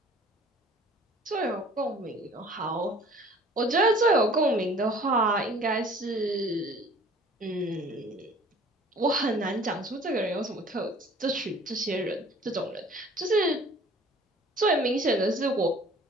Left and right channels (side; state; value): both; normal; correlation 0.50